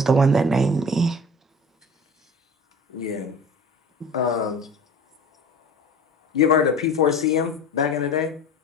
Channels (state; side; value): normal; both; correlation 0.39